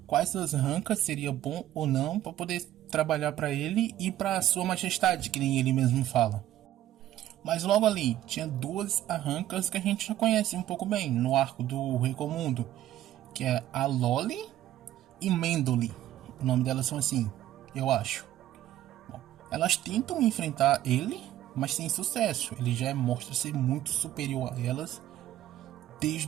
quais das arrancas seria bom ou não para poder trabalhar para ele e para sua majestade, que nem ele mesmo fala. Mas logo ali tinha duas arrancas que a gente já conhece um pouco bem no arco do Recomundo, que é a Loli e Mendoli. O nome delas são assim, eu acho. Bom, elas tentam enfrentar ele, mas sem sucesso. Ele já mostra ser muito superior a elas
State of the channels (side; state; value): left; quieter; 13.1 dB